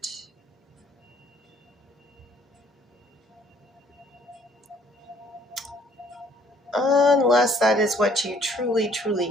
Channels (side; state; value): both; normal; correlation 0.61